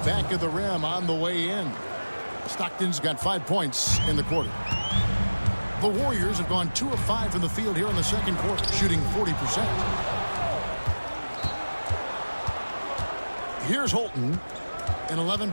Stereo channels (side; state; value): both; inverted; correlation -1.00